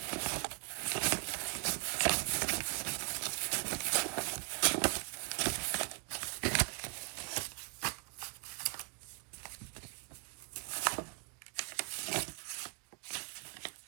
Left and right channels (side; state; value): left; quieter; 38.0 dB